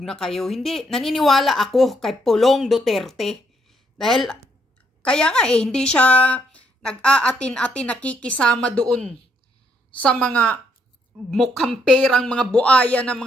na kayo. Hindi, naniniwala ako kay Pulong Duterte. Dahil, kaya nga hindi siya nag-aatin-atin nakikisama doon sa mga mukhang perang mga buaya ng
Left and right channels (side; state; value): both; normal; correlation 0.73